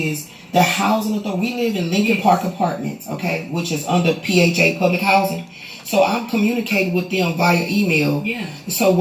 the housing authority. We live in Lincoln Park Apartments, okay, which is under PHA Public Housing. So I'm communicating with them via email. Yeah. So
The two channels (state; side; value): identical; both; correlation 1.00